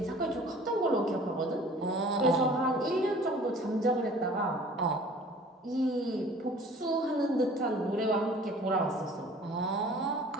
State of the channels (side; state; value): both; normal; correlation 0.48